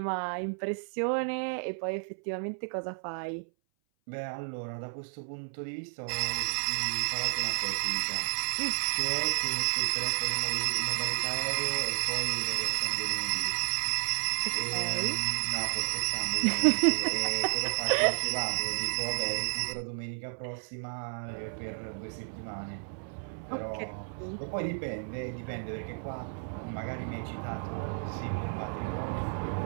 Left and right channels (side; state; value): left; silent; 57 dB below the other